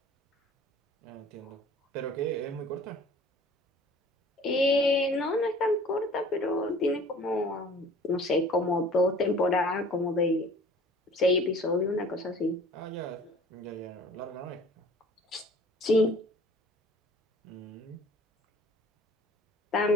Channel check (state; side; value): normal; both; correlation 0.49